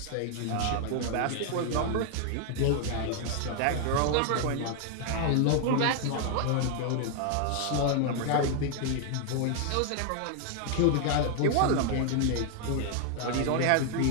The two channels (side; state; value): both; different; correlation 0.00